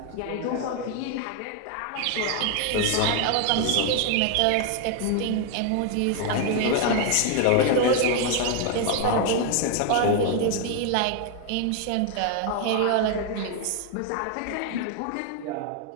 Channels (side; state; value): both; different; correlation 0.00